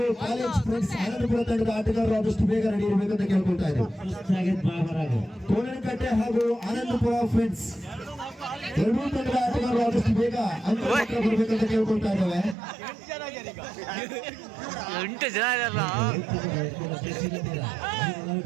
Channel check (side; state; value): left; drops out; at 12.6 s